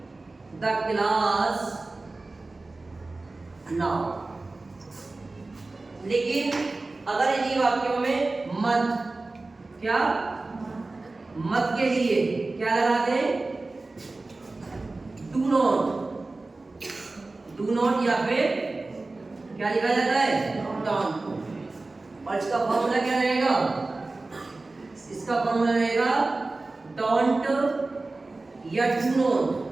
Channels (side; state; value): left; quieter; 3.3 dB